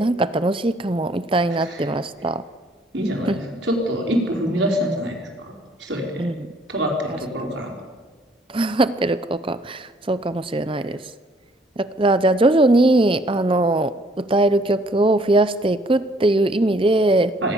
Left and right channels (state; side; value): normal; both; correlation 0.62